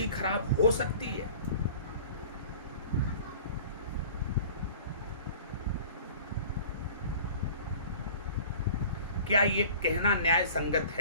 खराब हो सकती है? क्या ये कहना न्याय संगत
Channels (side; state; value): both; inverted; correlation -0.44